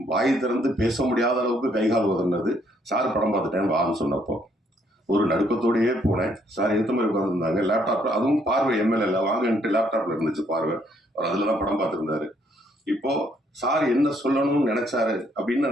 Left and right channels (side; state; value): both; normal; correlation 0.69